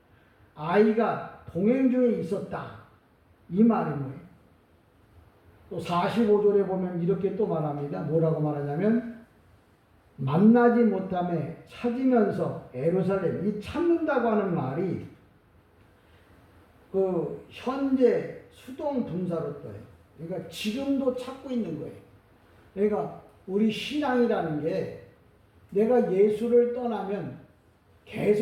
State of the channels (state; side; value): identical; both; correlation 1.00